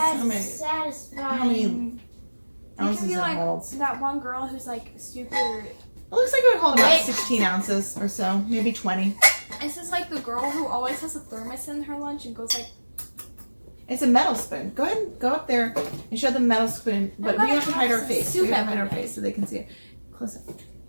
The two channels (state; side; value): inverted; both; correlation -1.00